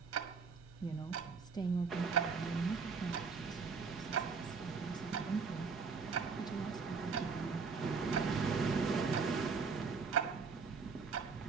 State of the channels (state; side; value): quieter; left; 5.1 dB